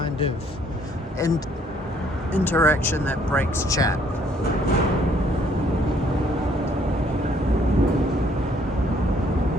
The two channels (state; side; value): normal; both; correlation 0.64